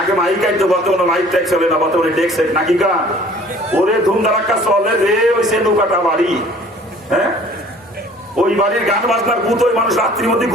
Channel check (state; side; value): normal; both; correlation 0.51